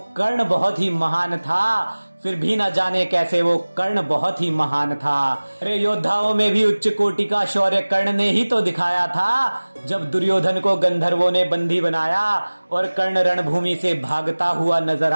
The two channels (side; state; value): both; inverted; correlation -1.00